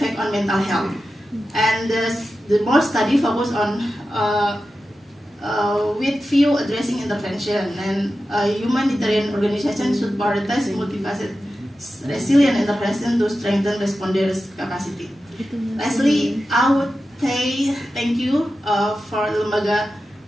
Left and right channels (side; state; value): both; normal; correlation 0.92